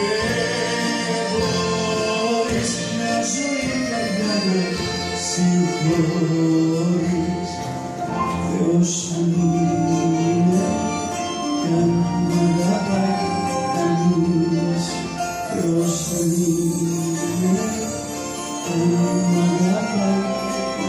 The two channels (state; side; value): identical; both; correlation 1.00